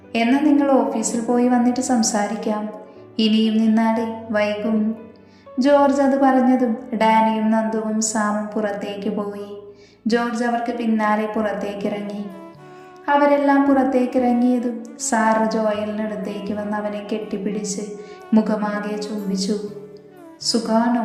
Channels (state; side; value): identical; both; correlation 1.00